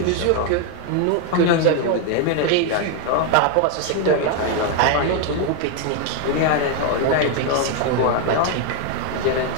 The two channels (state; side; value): different; both; correlation 0.01